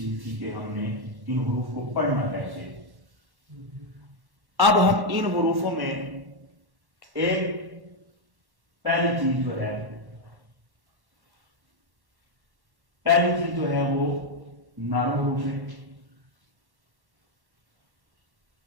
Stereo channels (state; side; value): late; left; 1.1 ms